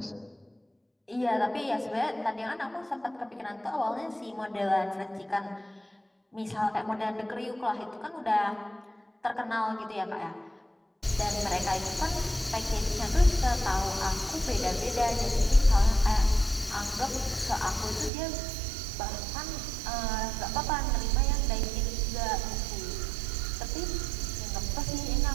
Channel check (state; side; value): drops out; left; at 18.1 s